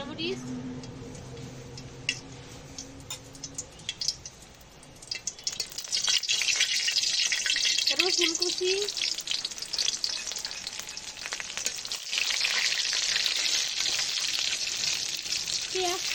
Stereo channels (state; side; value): identical; both; correlation 1.00